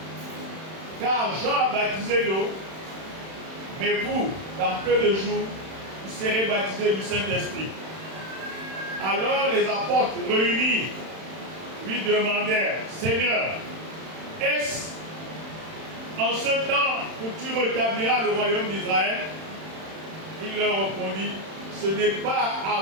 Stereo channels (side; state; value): left; late; 31 ms